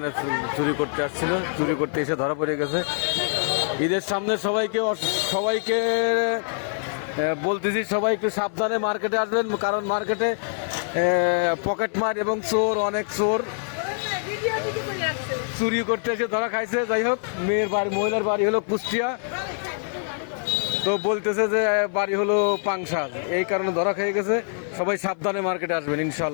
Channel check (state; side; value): silent; right; 62 dB below the other